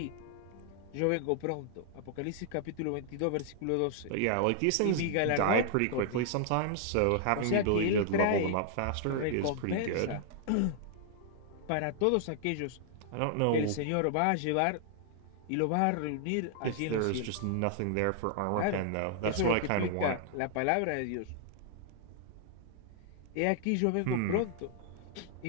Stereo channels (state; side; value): different; both; correlation -0.01